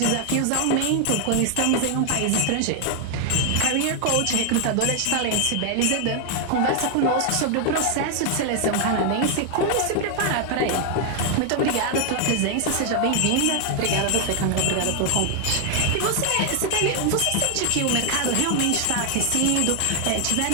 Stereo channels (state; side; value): different; both; correlation 0.00